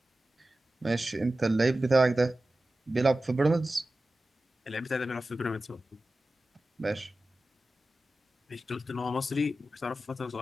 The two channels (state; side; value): normal; both; correlation 0.94